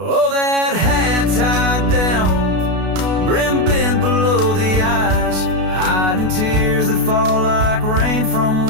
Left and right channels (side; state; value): left; late; 32 ms